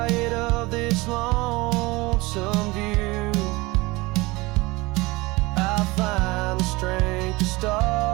of this lonesome view, I find the strength to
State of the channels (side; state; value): left; quieter; 22.7 dB